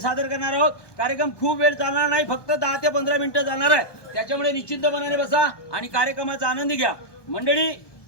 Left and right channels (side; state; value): right; late; 1.2 ms